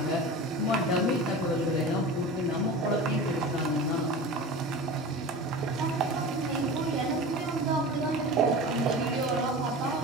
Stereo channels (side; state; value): both; normal; correlation 0.32